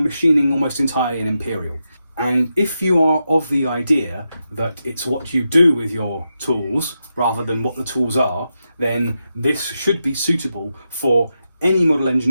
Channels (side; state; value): both; inverted; correlation -0.87